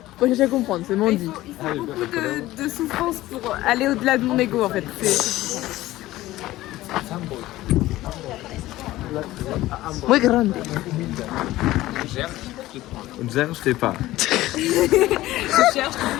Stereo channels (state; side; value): quieter; right; 16.5 dB